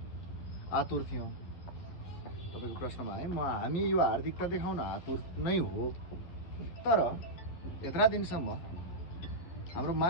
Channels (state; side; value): late; right; 11 ms